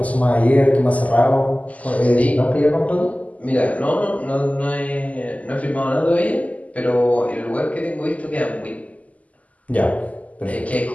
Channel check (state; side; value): late; right; 0.073 ms